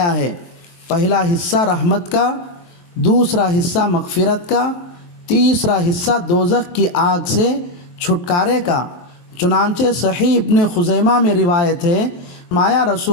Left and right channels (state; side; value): late; right; 23 ms